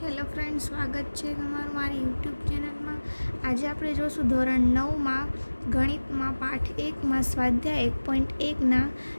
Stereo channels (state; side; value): inverted; both; correlation -1.00